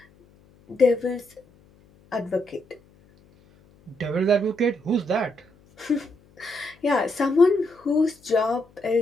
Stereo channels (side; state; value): left; noise; hum, 30 dB below the sound